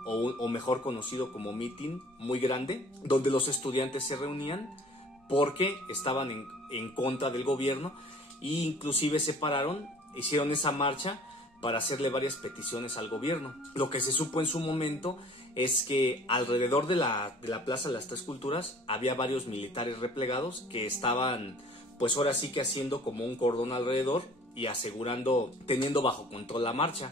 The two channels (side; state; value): both; normal; correlation 0.50